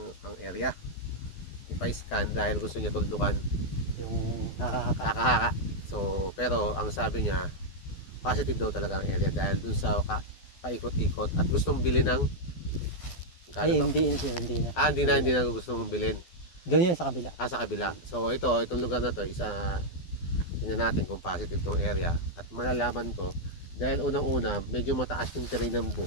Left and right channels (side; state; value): right; late; 12 ms